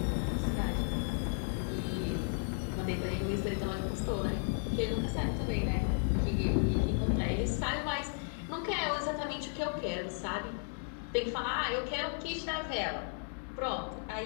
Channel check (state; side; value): silent; right; 55 dB below the other